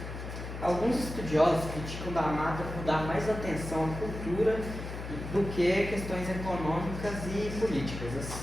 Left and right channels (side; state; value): left; noise; hum, 8 dB below the sound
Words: Alguns estudiosos criticam D'Amato por dar mais atenção à cultura do que questões econômicas e políticas,